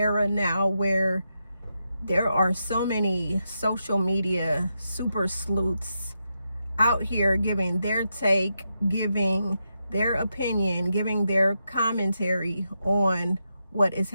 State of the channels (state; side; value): inverted; both; correlation -0.85